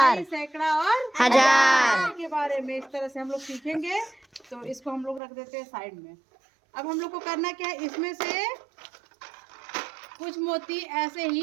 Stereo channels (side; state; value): left; drops out; at 5.2 s